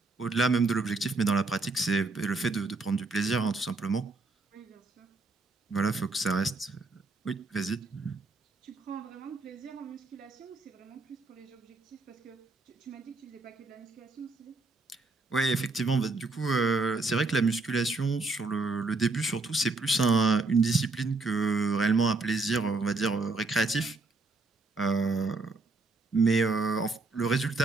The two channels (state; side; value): quieter; left; 3.6 dB